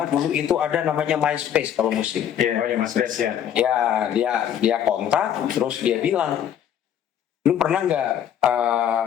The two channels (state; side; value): quieter; right; 9.7 dB